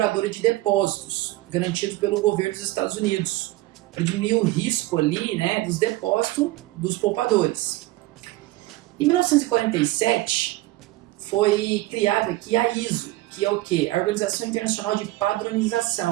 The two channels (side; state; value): left; quieter; 18.3 dB